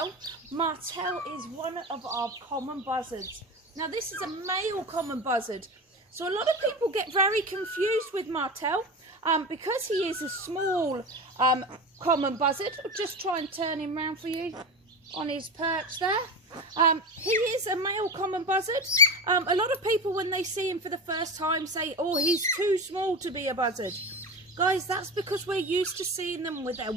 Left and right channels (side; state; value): both; normal; correlation 0.25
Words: Martel is one of our common buzzards. Now this is a male common buzzard, so a lot of people get very confused with Martel because he is a small common buzzard. I'll just try and turn him round for you on his perch there. He is a male common buzzard. A lot of people, when they see him for the first time, say, oh, he's too small to be a buzzard. Guys, that's because we're used to seeing them with their